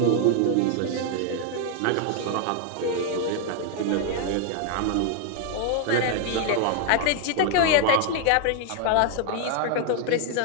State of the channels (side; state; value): both; different; correlation 0.00